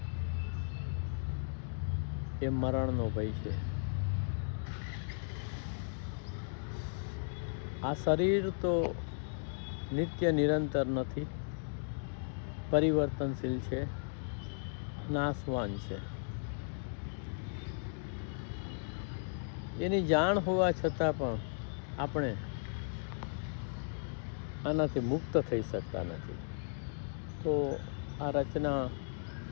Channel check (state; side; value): silent; right; digital silence